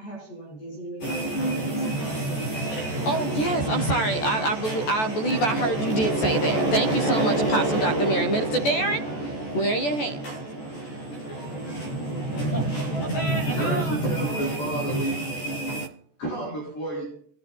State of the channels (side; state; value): right; late; 14 ms